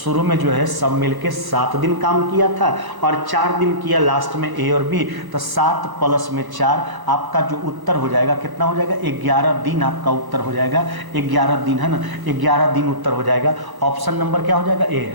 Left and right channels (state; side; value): late; left; 1.1 ms